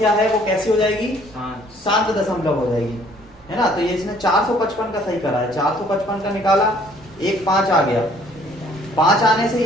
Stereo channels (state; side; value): normal; both; correlation 0.59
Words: है वो कैसी हो जाएगी, शांत दशमलव हो जाएगी, है ना। तो ये इसने 455 का सही करा है, 455 का निकाला, एक 5 आ गया, 5 आने से